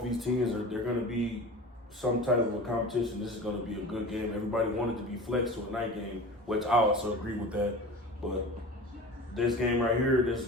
of these teams they're going to be some type of a competition. This is going to be a good game. Everybody wanted to be flexed to a night game, which I also agree with that. But this game right here, this is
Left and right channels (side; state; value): both; normal; correlation 0.35